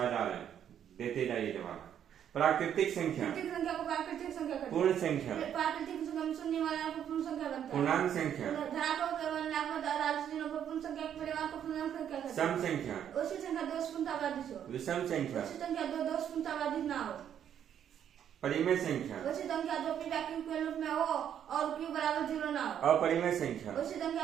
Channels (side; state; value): left; quieter; 9.4 dB